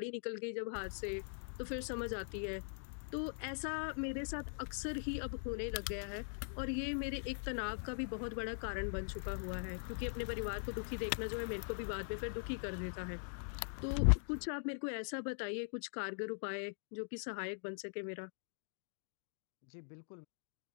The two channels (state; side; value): silent; right; digital silence